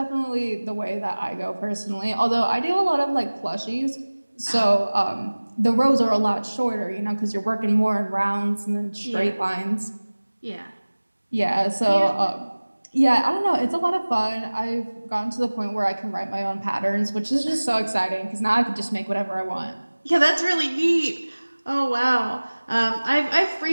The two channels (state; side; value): inverted; both; correlation -1.00